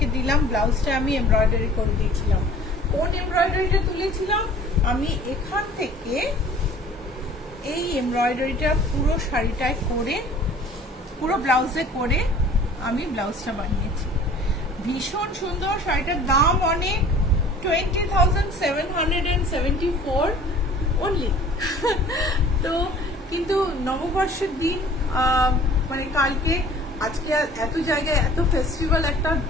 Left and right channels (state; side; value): normal; both; correlation 0.49